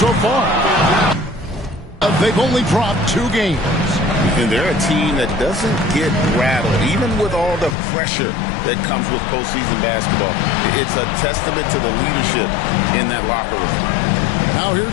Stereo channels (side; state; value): right; drops out; at 7.8 s